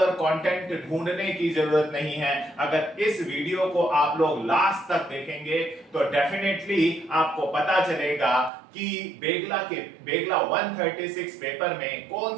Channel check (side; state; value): left; drops out; at 8.5 s